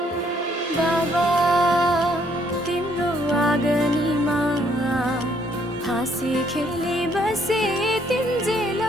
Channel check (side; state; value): both; normal; correlation 0.67